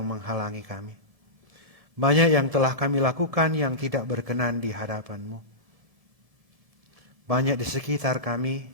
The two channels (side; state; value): left; late; 1.4 ms